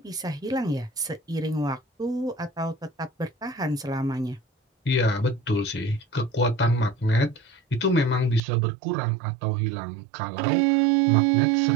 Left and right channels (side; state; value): left; drops out; at 8.4 s